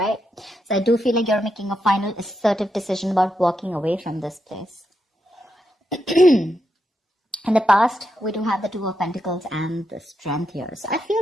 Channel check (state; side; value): normal; both; correlation 0.83